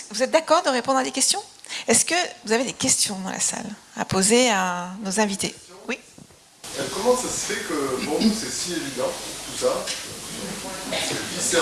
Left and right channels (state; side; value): identical; both; correlation 1.00